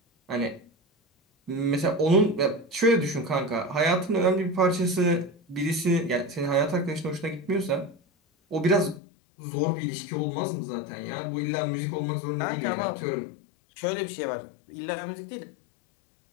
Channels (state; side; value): drops out; right; at 9.0 s